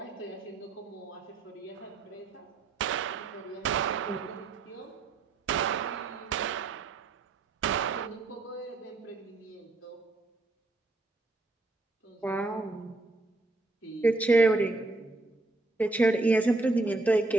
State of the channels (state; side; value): quieter; left; 3.2 dB